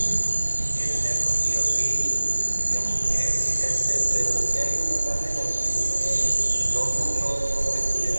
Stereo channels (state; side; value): inverted; both; correlation -1.00